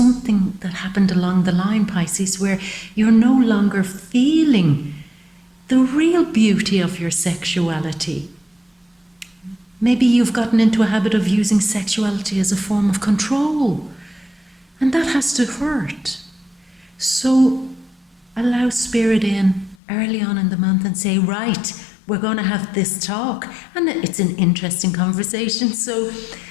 that happened along the line, Pisces, where you're no longer feeling the real beauty of your sexuality. Maybe you've gotten into a habit of using sexuality as a form of control. And that has to hurt. So allow Spirit in early on in the month and say, right, we're going to have this talk. And it's an interesting conversation. So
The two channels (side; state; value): right; drops out; at 19.8 s